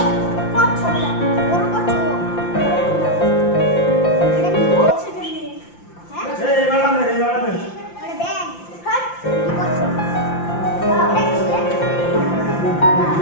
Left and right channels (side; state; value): right; late; 5.8 ms